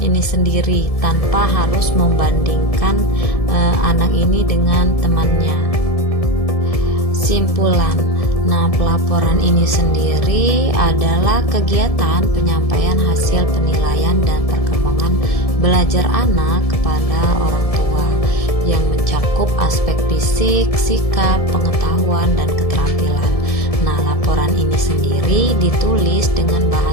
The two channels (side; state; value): right; late; 1.7 ms